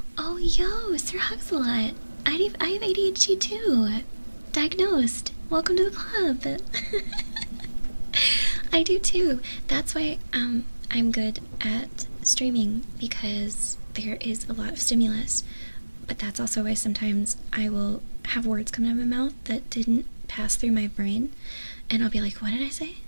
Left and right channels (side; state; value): both; inverted; correlation -1.00